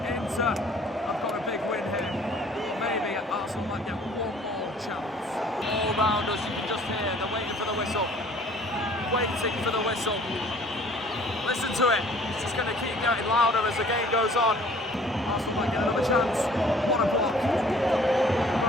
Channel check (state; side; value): normal; both; correlation 0.54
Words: Inter have got a big win here. Maybe Arsenal might get 1 more chance. All round us, you can just hear they're waiting for the whistle. Waiting for the whistle. Listen to it. It's just going to keep getting louder as the game goes on. Arsenal might get another chance. What a block.